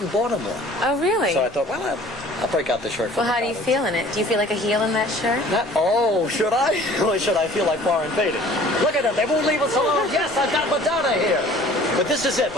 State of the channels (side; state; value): both; normal; correlation 0.50